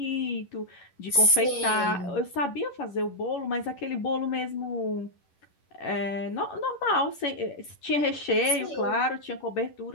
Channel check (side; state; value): right; late; 11 ms